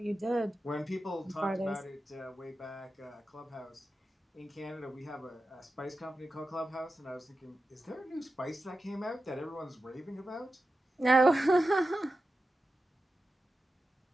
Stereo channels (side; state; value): both; normal; correlation 0.92